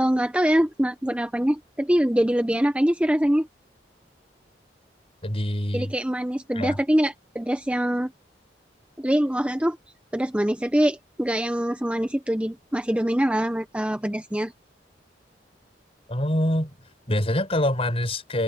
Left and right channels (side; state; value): both; normal; correlation 0.91